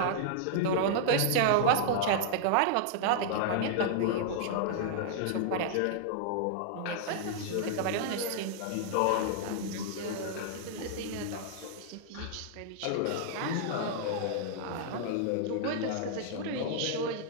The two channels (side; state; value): both; different; correlation -0.01